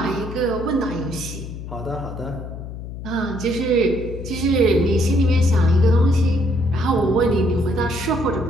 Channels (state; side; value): noise; left; hum, 10 dB below the sound